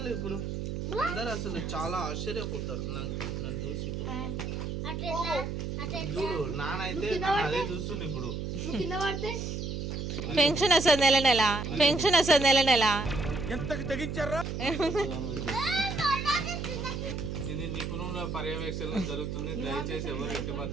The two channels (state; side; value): noise; right; hum, 4 dB below the sound